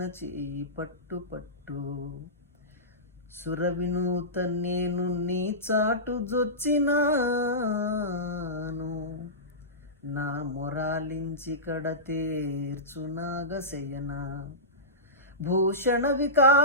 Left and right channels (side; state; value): both; normal; correlation -0.19